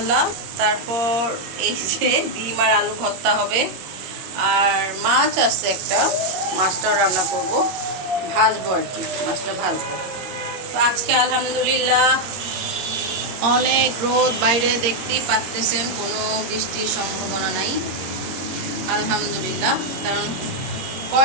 তারপর এই যে ডিম আর আলু ভর্তা হবে, আর মাছ আছে একটা, মাছটাও রান্না করব, ভাজবো আর কি, মাছটা ভাজবো। তো আজকে আলহামদুলিল্লাহ অনেক রোদ, বাইরে দেখতেই পাচ্ছেন, কোনো বৃষ্টির সম্ভাবনা নাই আলহামদুলিল্লাহ। কারণ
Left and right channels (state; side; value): late; left; 21 ms